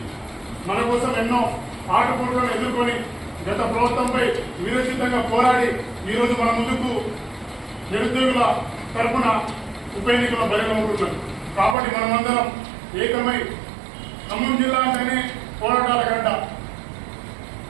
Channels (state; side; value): drops out; left; at 11.8 s